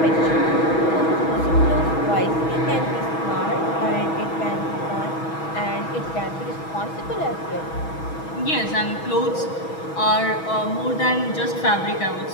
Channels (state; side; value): late; right; 6.2 ms